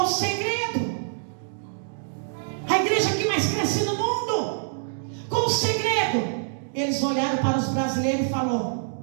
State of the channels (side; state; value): left; silent; digital silence